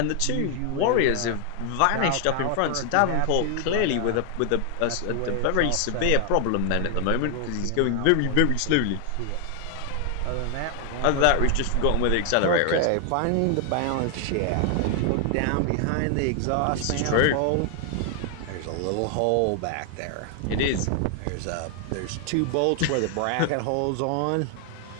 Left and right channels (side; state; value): both; different; correlation 0.00